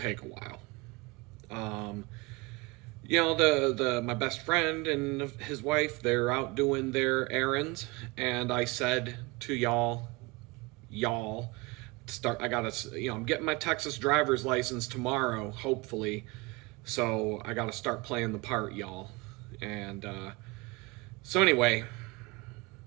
take a while. My best friend and his wife, they're out doing their errands, and I said to y'all, I'm getting my Texas driver's license tomorrow, hopefully, so I gotta start playing the part, y'all. And so anyway,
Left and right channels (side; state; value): left; quieter; 25.0 dB